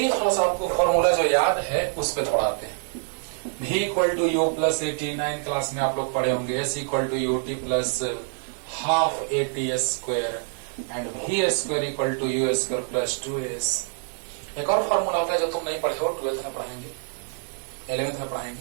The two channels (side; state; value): left; silent; 61 dB below the other